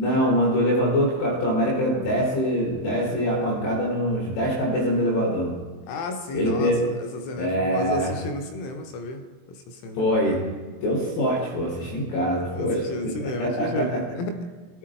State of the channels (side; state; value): right; late; 23 ms